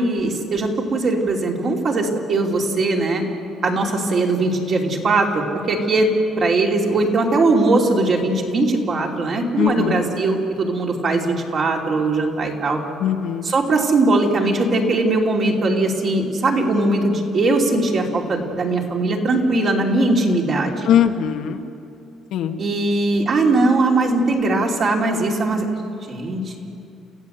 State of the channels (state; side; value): normal; both; correlation 0.69